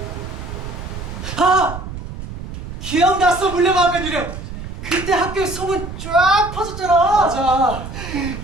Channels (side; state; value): right; noise; rumble, 9 dB below the sound